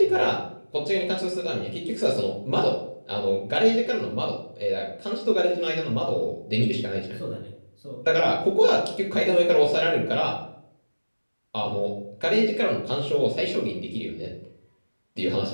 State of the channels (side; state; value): both; inverted; correlation -1.00